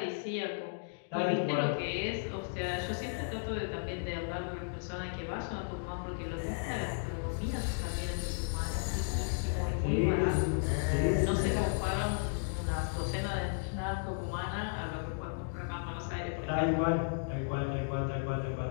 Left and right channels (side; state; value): right; silent; digital silence